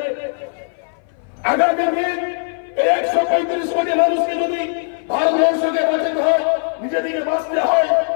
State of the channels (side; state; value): right; silent; 61 dB below the other